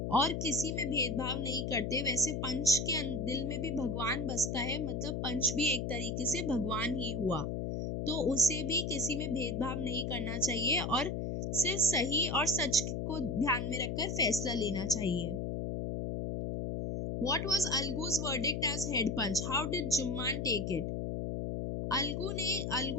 और किसी में भेदभाव नहीं करते, वैसे पंच के दिल में भी भगवान बसता है, मतलब पंच भी एक तरीके से भगवान ही हुआ, तो उसे भी किसी में भेदभाव नहीं करना चाहिए और सिर्फ सही और सच को ध्यान में रखकर फैसला लेना चाहिए। What was Algu's verdict as head punch? How did जुम्मान take it?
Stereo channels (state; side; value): noise; left; hum, 2 dB below the sound